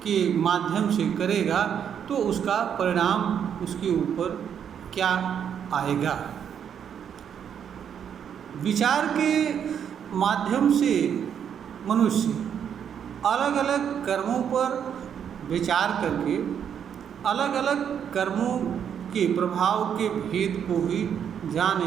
के माध्यम से करेगा तो उसका परिणाम उसके ऊपर क्या आएगा। विचार के माध्यम से मनुष्य अलग अलग कर्मों पर विचार करके अलग अलग कर्मों के प्रभाव के भेद को भी जान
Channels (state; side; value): quieter; left; 8.3 dB